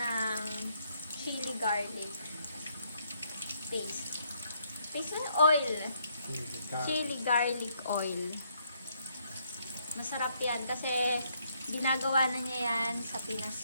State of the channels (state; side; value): inverted; both; correlation -0.72